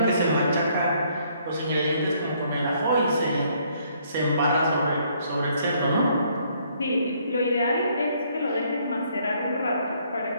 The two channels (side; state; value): both; inverted; correlation -0.67